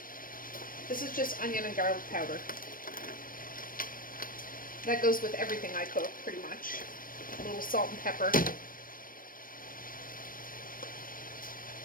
This is just onion and garlic powder. That goes with everything I cook, pretty much. A little salt and pepper.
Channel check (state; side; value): late; right; 0.41 ms